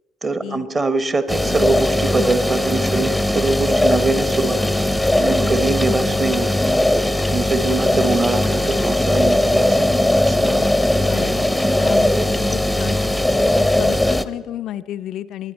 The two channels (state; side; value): normal; both; correlation 0.92